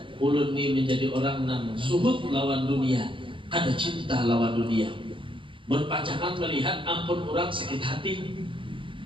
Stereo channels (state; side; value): late; left; 0.25 ms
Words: ulun ini menjadi orang yang suhud lawan dunia, ada cinta lawan dunia. Berpacangan melihat ampun orang sakit hati,